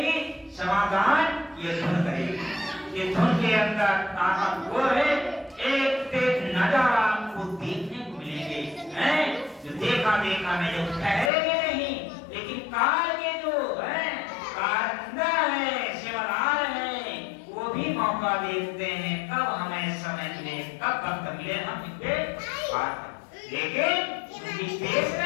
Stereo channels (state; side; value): drops out; right; at 11.3 s